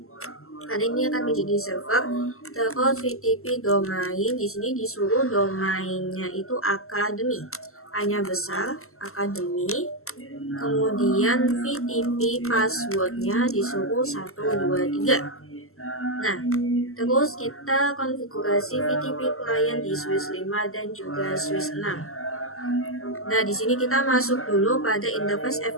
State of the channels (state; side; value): late; right; 0.62 ms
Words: Karena ini akan menjadi server. Terus VTP domain, di sini disuruh domainnya itu academy, A-nya besar, academy. Kemudian VTP passwordnya disuruh 123. Nah, terus kita konfigurasi VTP client di switch 5 dan juga switch 6. Nah, di sini kita masuk dulu pada interface